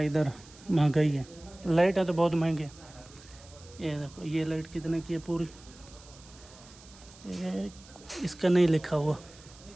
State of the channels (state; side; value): noise; right; hiss, 22 dB below the sound